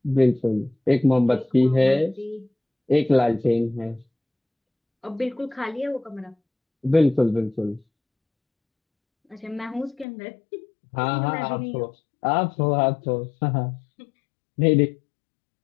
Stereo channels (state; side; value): drops out; right; at 10.1 s